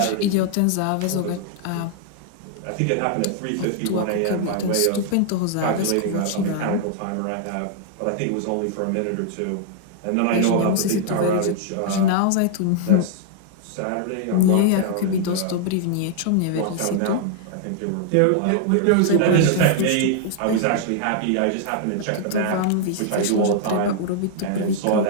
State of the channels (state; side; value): different; both; correlation -0.01